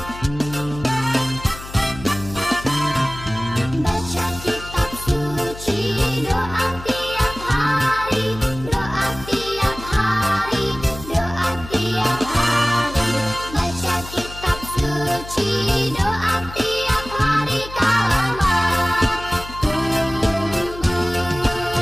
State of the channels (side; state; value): left; noise; hum, 14 dB below the sound